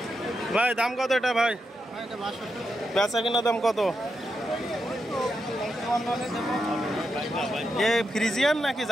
ভাই দাম কত এটা ভাই? বেচা কিনা দাম কত? এ ফ্রিজিয়ান নাকি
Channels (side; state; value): both; normal; correlation 0.85